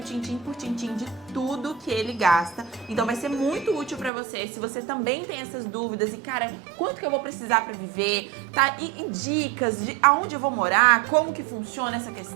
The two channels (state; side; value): drops out; left; at 4.1 s